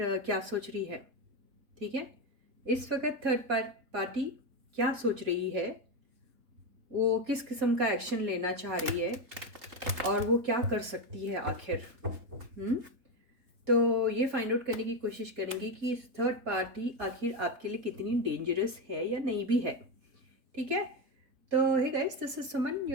क्या सोच रही है। ठीक है, इस वक्त थर्ड पार्टी क्या सोच रही है, वो किस किस्म का एक्शन लेना चाह रही है और वो क्या कर सकती है आखिर। तो ये फाइंड आउट करने की कोशिश करेंगे कि थर्ड पार्टी आखिर आपके लिए कितनी डेंजरस है या नहीं भी है। ठीक है, तो hey guys, this is Suman,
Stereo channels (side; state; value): left; late; 3.8 ms